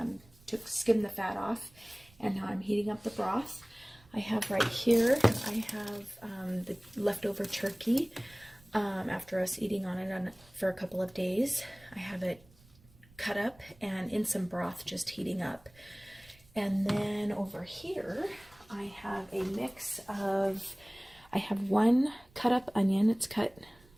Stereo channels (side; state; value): right; noise; rumble, 27 dB below the sound